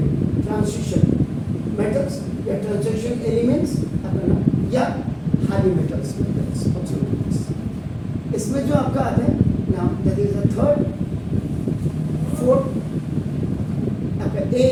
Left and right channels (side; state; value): both; identical; correlation 1.00